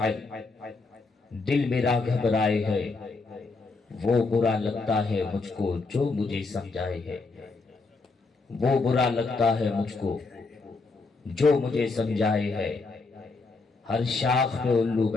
دل میرا گھبرائے ہے وہ برا لگتا ہے مجھ کو جو مجھے سمجھائے ہے وہ برا لگتا ہے مجھ کو جو مجھے سمجھائے ہے ہر شاخ پہ الو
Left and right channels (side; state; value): right; quieter; 3.9 dB